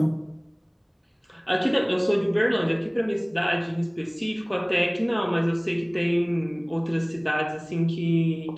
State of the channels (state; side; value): identical; both; correlation 1.00